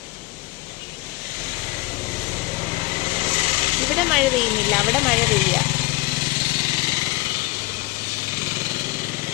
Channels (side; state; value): right; quieter; 21.4 dB